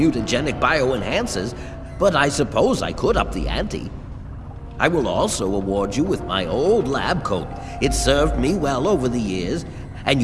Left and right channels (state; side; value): identical; both; correlation 1.00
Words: bioenhancers, but I suppose I could up the ante. I will also award you with my old lab coat. It served me well over the years, and